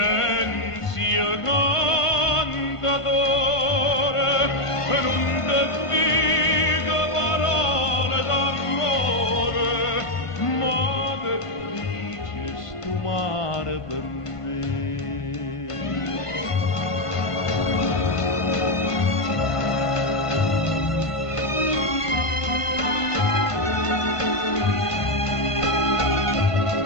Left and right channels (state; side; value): late; right; 1.5 ms